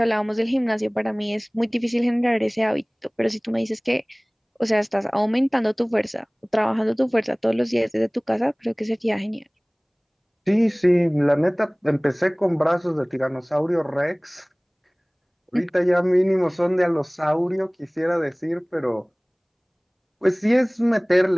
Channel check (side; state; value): both; identical; correlation 1.00